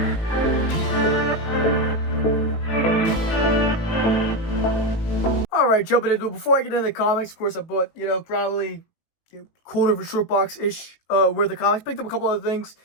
Alright, jumping into it. Before I get into the comics, of course, I bought, probably quarter of a short box-ish worth of comics. Picked up a couple other things.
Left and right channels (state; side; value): late; right; 18 ms